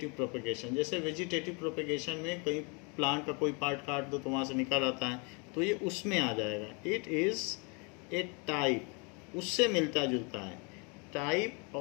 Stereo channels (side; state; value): right; quieter; 32.7 dB